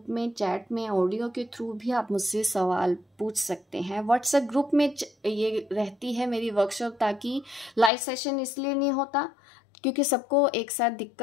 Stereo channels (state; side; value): drops out; right; at 7.9 s